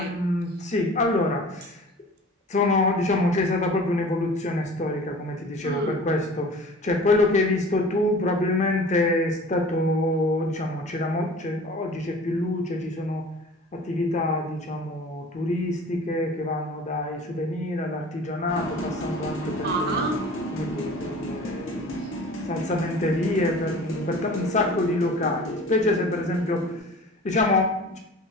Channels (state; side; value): normal; both; correlation 0.43